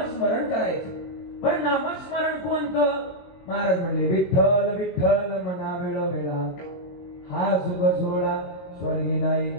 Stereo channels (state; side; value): late; right; 22 ms